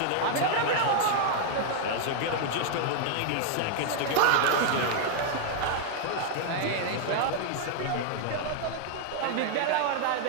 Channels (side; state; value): both; different; correlation 0.00